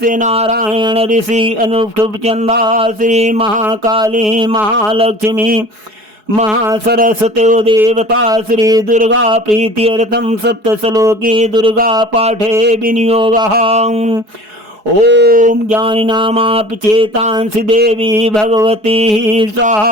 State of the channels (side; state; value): left; late; 4.7 ms